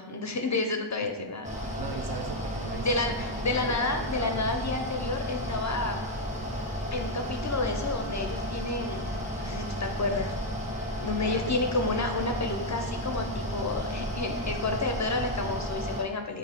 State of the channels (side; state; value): both; normal; correlation 0.01